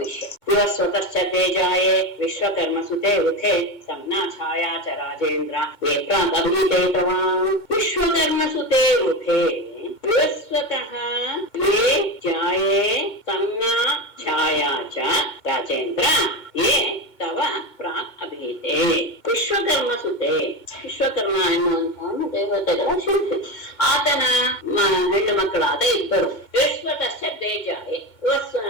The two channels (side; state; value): right; late; 2.2 ms